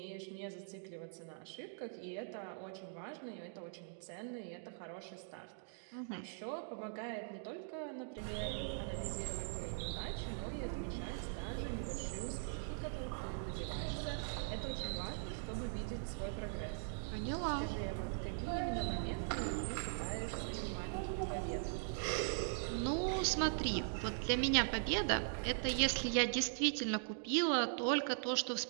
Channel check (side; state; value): left; silent; digital silence